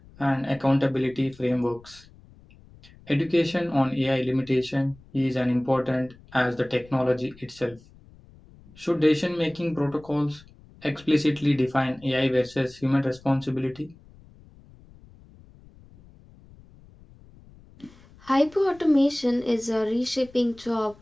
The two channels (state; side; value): noise; left; rumble, 24 dB below the sound